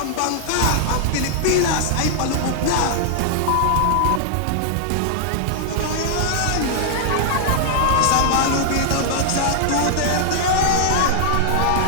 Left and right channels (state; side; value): different; both; correlation -0.01